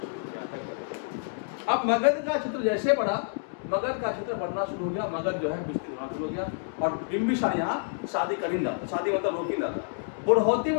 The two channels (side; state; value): right; silent; digital silence